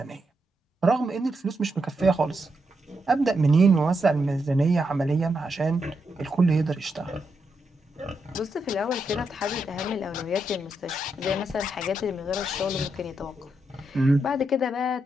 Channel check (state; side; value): normal; both; correlation 0.82